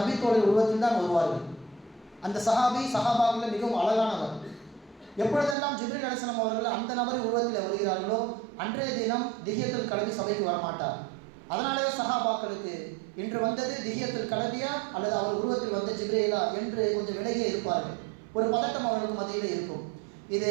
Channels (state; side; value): drops out; left; at 5.6 s